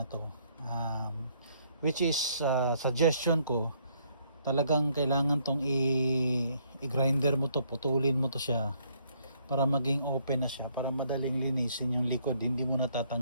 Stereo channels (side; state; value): both; inverted; correlation -0.68